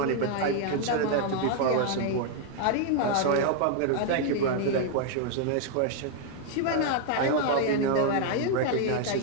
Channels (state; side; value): different; both; correlation 0.00